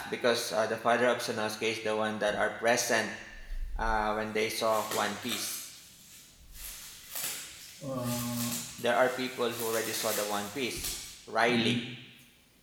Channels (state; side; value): identical; both; correlation 1.00